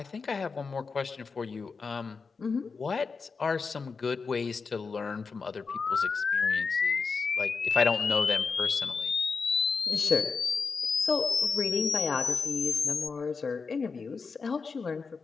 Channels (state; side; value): quieter; right; 4.9 dB